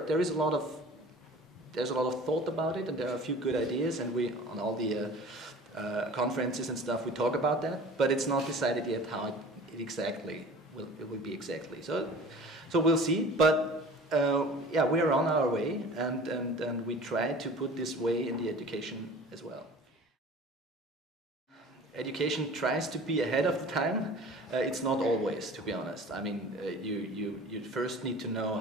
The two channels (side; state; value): both; normal; correlation 0.43